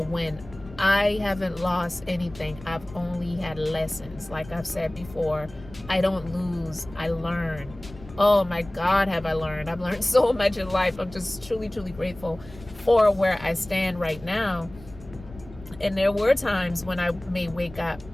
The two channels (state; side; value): noise; left; rumble, 18 dB below the sound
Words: win. I haven't lost anything. I've only had lessons. Like I've said before, I don't lose, I learn. Oh my God, have I learned. I've learned so much in life. I'm just truly, truly grateful for where I stand right now. And there were times when I may wake up,